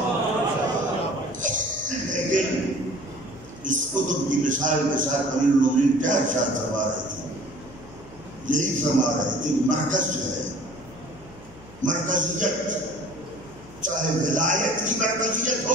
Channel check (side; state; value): left; noise; hum, 21 dB below the sound